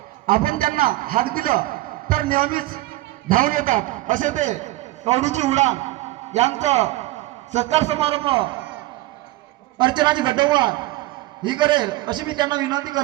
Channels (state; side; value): quieter; left; 18.2 dB